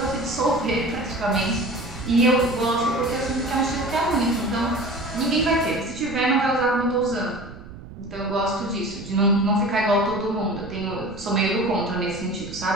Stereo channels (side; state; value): right; noise; rumble, 15 dB below the sound